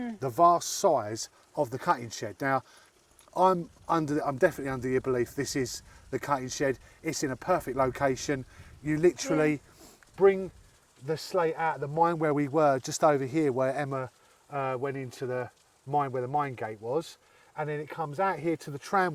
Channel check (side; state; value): both; identical; correlation 1.00